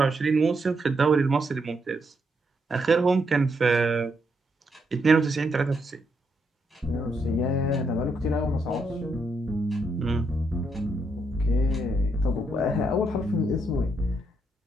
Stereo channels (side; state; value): both; normal; correlation 0.78